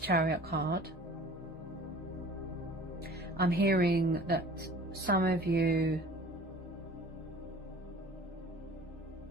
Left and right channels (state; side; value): normal; both; correlation 0.45